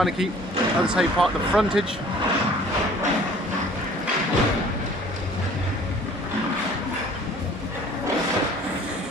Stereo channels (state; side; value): normal; both; correlation 0.51